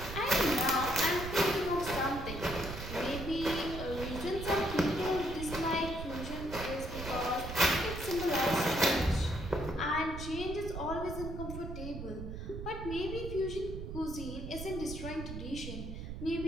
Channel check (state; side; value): noise; right; rumble, 8 dB below the sound